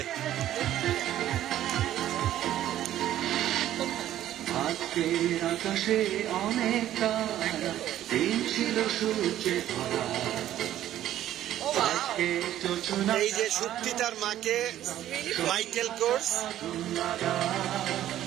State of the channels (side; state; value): left; quieter; 12.4 dB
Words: আজকের আকাশে অনেক তারা, দিন ছিল সূর্যে ভরা। আজকে যোজনা এই যে সুপ্তি তার মাকে মাইকেল কোর্স